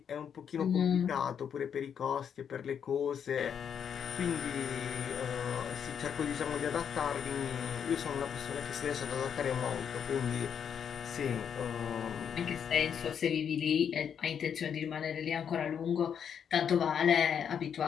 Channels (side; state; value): right; quieter; 7.9 dB